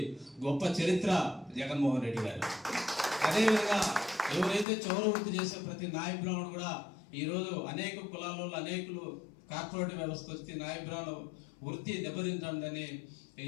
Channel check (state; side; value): drops out; right; at 4.7 s